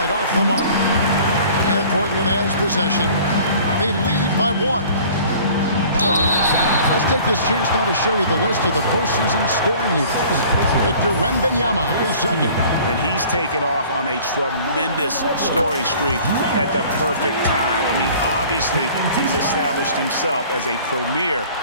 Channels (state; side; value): inverted; both; correlation -0.48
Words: off the mark. And Portland has possession. They lead by 1. Let's take this chance now to show you the list of the postseason scoring leaders. Victor Wembanyama is second. And he's taken off on a tremendous scoring streak at the perfect time. I mean, obviously, he's established himself as a premier